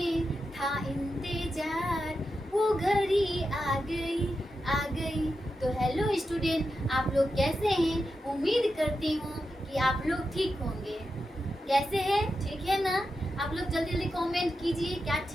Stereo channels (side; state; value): both; normal; correlation 0.89